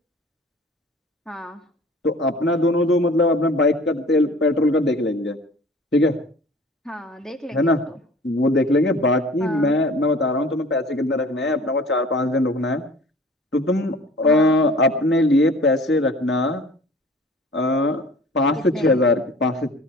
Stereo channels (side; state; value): both; normal; correlation 0.46